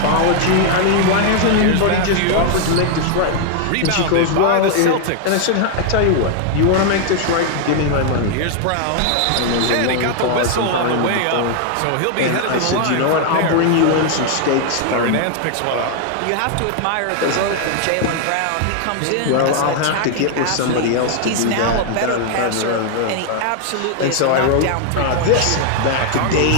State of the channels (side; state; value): both; different; correlation 0.00